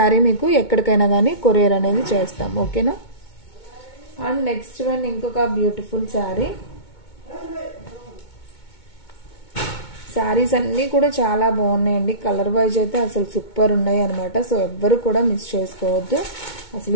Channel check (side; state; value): right; late; 2.2 ms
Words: మీకు ఎక్కడికైనా కానీ కొరియర్ అనేది చేస్తాం, ఓకేనా. అండ్ నెక్స్ట్ వన్ ఇంకొక బ్యూటిఫుల్ శారీ. శారీస్ అన్నీ కూడా చాలా బాగున్నాయండి. కలర్ వైజ్ అయితే అసలు సూపర్ ఉన్నాయి అనమాట. సో ఎవ్వరు కూడా మిస్ చేసుకోవద్దు.